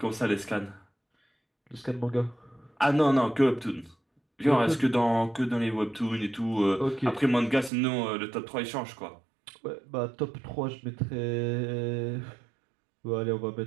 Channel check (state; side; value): drops out; left; at 7.7 s